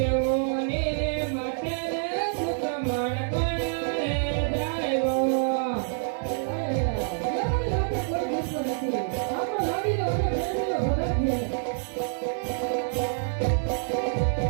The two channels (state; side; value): silent; left; digital silence